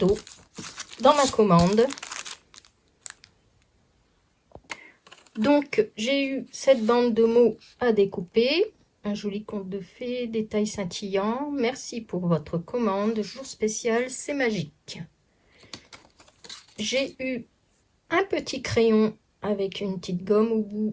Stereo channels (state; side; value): identical; both; correlation 1.00